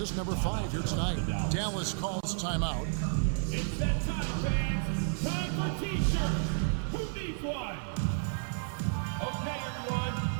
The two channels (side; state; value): left; silent; 57 dB below the other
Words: number 5 here tonight. Dallas calls timeout. It's that time, fans. Time for T-shirts. Who needs one? Okay, everyone.